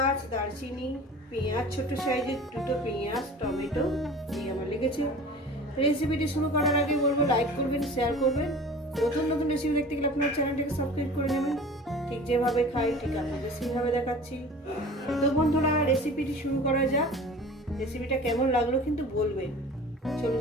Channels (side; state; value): both; normal; correlation 0.41